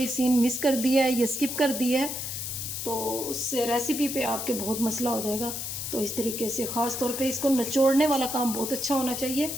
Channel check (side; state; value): left; noise; hiss, 5 dB below the sound